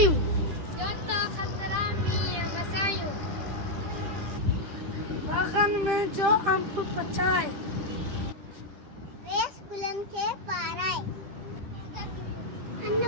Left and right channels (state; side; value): late; left; 10 ms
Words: बागन में जो अम्ब पचाए रेस गुलन के पाराए